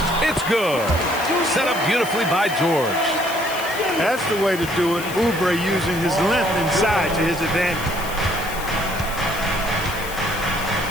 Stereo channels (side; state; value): left; noise; hiss, 12 dB below the sound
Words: It's good. Set up beautifully by George. That's the way to do it. Oubre using his length inside to his advantage.